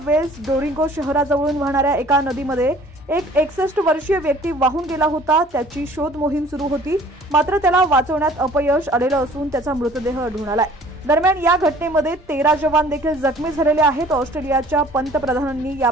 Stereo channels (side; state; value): both; normal; correlation 0.52